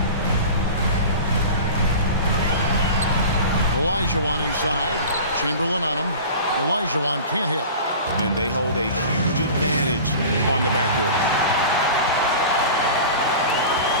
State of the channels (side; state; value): both; inverted; correlation -0.36